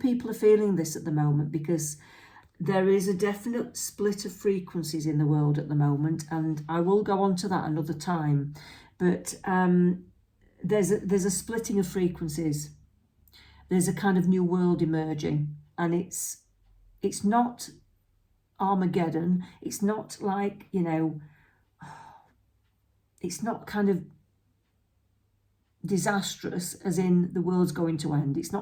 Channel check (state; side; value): identical; both; correlation 1.00